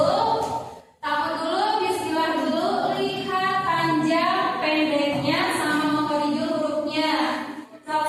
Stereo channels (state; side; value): identical; both; correlation 1.00